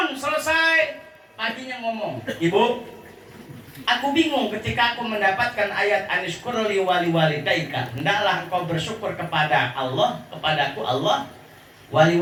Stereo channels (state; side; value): identical; both; correlation 1.00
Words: selesai paginya ngomong, Ibu, aku bingung ketika aku mendapatkan ayat anishkurli wali walidaika. Hendaklah engkau bersyukur kepada Allah, kepadaku Allah, wali